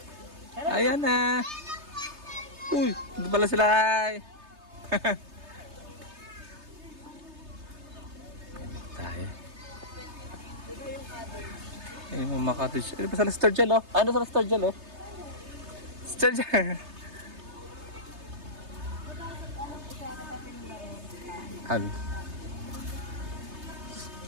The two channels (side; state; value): left; late; 3.3 ms